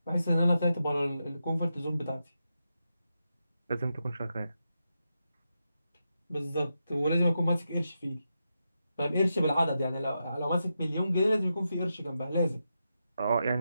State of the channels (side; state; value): both; inverted; correlation -0.87